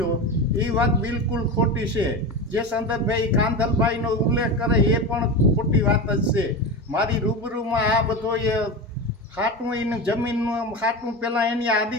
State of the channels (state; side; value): normal; both; correlation 0.23